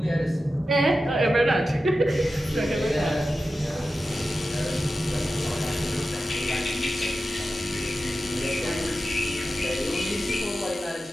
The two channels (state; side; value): normal; both; correlation 0.92